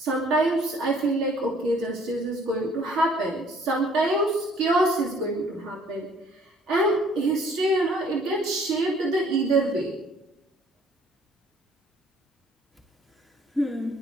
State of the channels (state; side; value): normal; both; correlation 0.58